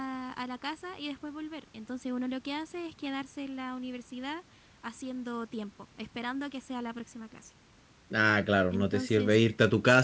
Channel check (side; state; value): both; identical; correlation 1.00